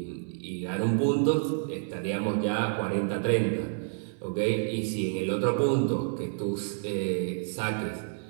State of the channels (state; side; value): silent; left; digital silence